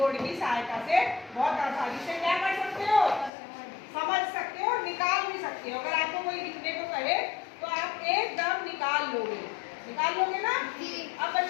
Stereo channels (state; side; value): drops out; right; at 3.3 s